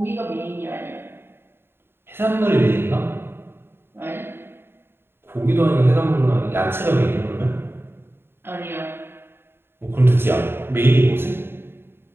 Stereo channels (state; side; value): late; left; 0.11 ms